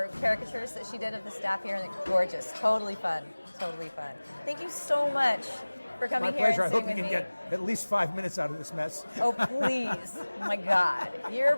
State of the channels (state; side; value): inverted; both; correlation -1.00